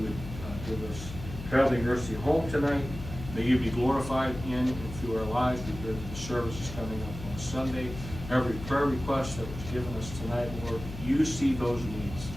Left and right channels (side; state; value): left; noise; hum, 10 dB below the sound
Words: would give us traveling mercy home tonight. May you be glorified in and through our lives. We pray that the service is coming up on Sunday. Every prayer request that was given us tonight, Lord, you see those needs,